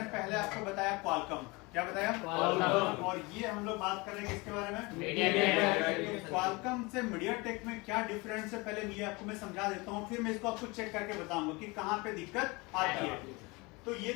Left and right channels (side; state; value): right; quieter; 25.5 dB